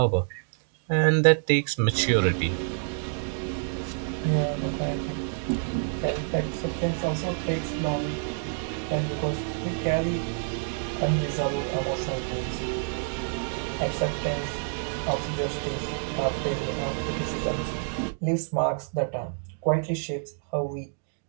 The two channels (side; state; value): left; silent; digital silence